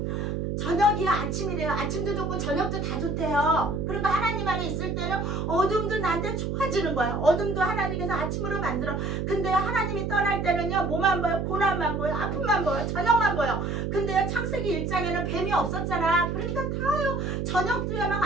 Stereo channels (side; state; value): right; noise; hum, 1 dB below the sound